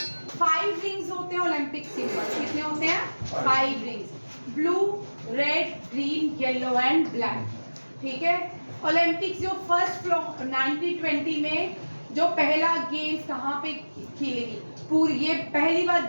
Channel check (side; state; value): both; inverted; correlation -1.00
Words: 5 रिंग्स होते हैं ओलंपिक सिंबल। कितने होते हैं? 5 rings, blue, red, green, yellow and black, ठीक है। ओलंपिक्स जो फर्स्ट 1920 में जो पहला गेम्स कहाँ पे खेलेगी पूरी, ये पहली बार